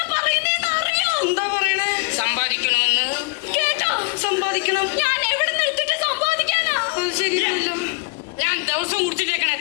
ശരിയല്ലോ. ഞാൻ ദിവസം കുടിച്ചിട്ടേക്കണ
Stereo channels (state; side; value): quieter; right; 30.4 dB